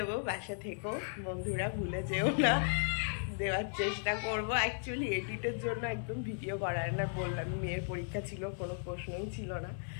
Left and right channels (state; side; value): silent; right; 54 dB below the other